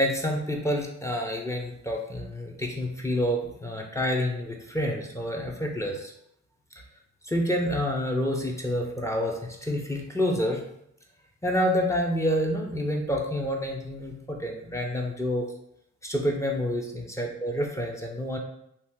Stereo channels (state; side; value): normal; both; correlation 0.56